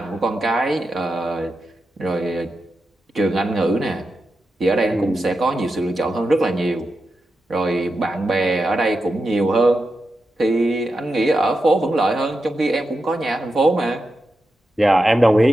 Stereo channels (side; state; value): both; normal; correlation 0.89